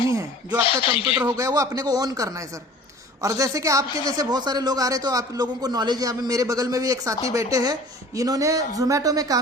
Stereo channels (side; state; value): both; normal; correlation 0.45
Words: है। जो आपका कंप्यूटर हो गया वो अपने को ऑन करना है सर। और जैसे कि आपके जैसे बहुत सारे लोग आ रहे, तो आप लोगों को नॉलेज है। अभी मेरे बगल में भी एक साथी बैठे हैं, इन्होंने जोमेटो में